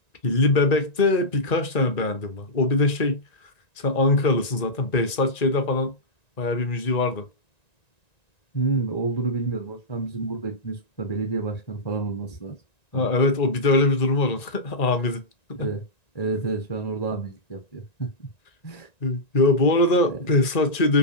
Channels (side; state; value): right; late; 1.9 ms